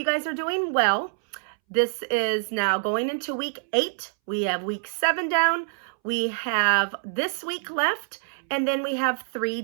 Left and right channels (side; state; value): left; silent; 61 dB below the other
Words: guys are doing well. This is now going into week 8. We have week 7 down. We have this week left, and then we have 3